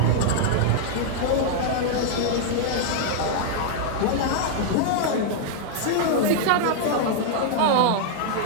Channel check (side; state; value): both; different; correlation -0.01